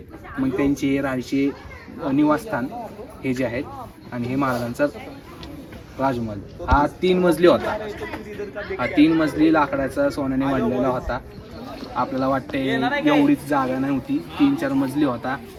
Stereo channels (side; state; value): both; identical; correlation 1.00